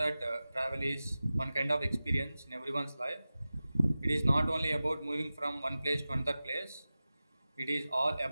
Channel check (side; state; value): both; inverted; correlation -0.95